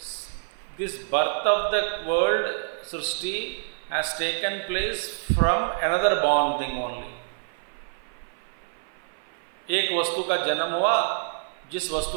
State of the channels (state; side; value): silent; left; 56 dB below the other